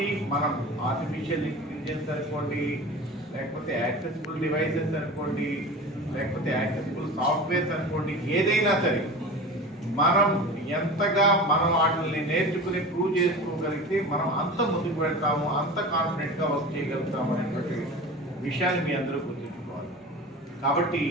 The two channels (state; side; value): normal; both; correlation 0.33